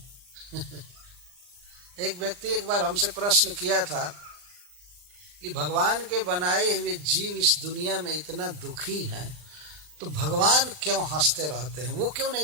एक व्यक्ति एक बार हमसे प्रश्न किया था कि भगवान के बनाए हुए जीव इस दुनिया में इतना दुखी हैं, तो भगवान क्यों हंसते रहते हैं, वो क्यों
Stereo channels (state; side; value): late; left; 39 ms